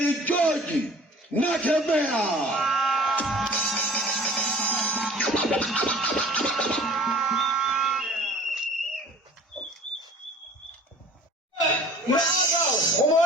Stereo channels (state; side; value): normal; both; correlation 0.47